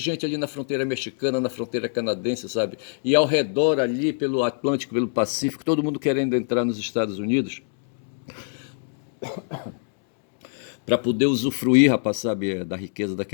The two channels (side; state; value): right; silent; 62 dB below the other